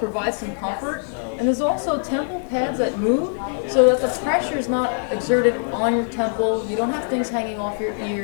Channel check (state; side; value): silent; right; digital silence